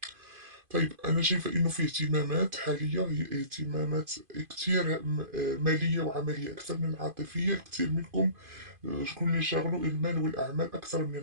طيب أنا شايفة إنه في اهتمامات حالية هي اهتمامات كتير مالية وعملية أكثر من العاطفية. كتير منكم شكون اللي شاغلو المال والأعمال أكثر من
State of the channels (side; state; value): left; late; 2.5 ms